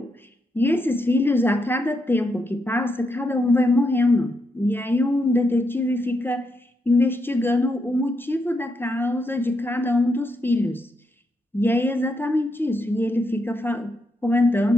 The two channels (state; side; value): normal; both; correlation 0.81